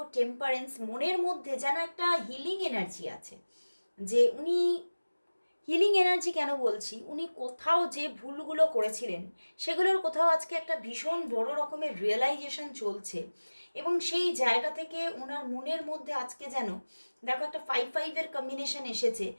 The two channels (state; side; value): inverted; both; correlation -1.00